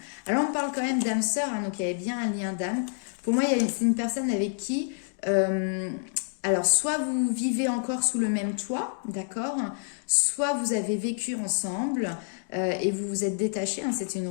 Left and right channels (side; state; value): right; silent; digital silence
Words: Alors, on parle quand même d'âme sœur, hein, donc il y avait bien un lien d'âme. Pour moi, c'est une personne avec qui, alors, soit vous vivez encore sous le même toit, d'accord, soit vous avez vécu ensemble et vous vous êtes détachés, hein, c'est une